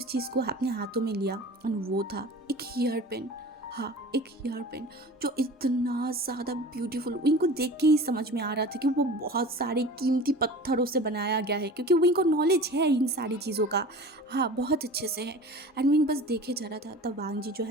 चीज़ को अपने हाथों में लिया एंड वो था एक हेयर पेन। हाँ, एक हेयर पेन जो इतना ज़्यादा ब्यूटीफुल, विंग को देख के ही समझ में आ रहा था कि वो बहुत सारे कीमती पत्थरों से बनाया गया है, क्योंकि विंग को नॉलेज है इन सारी चीज़ों का। हाँ, बहुत अच्छे से है। एंड विंग बस देखे जा रहा था। तब वांग जी जो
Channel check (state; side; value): normal; both; correlation 0.38